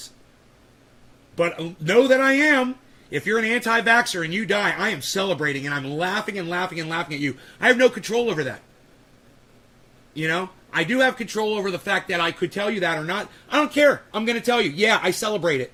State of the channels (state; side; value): identical; both; correlation 1.00